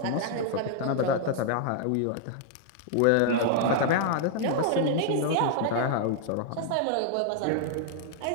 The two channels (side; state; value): both; different; correlation -0.01